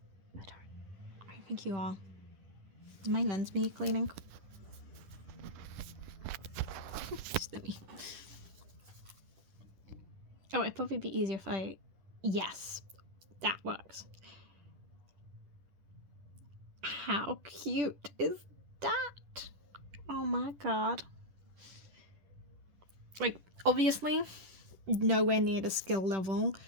I think you are. Does my lens need cleaning? Oh, it'd probably be easier if I... Yes, that works. How cute is that? Oh my god. Like, obviously, nowhere near the skill level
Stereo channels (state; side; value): late; left; 10 ms